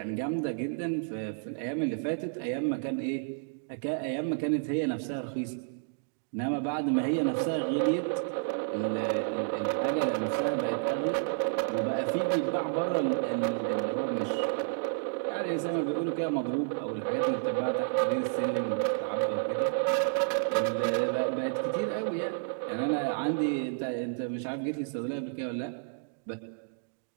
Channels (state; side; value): silent; left; digital silence